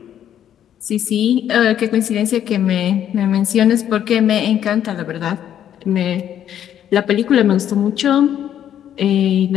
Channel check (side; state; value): right; quieter; 10.2 dB